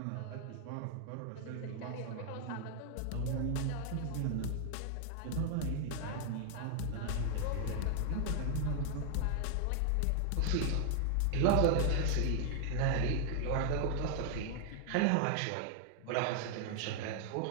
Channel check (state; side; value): different; both; correlation 0.00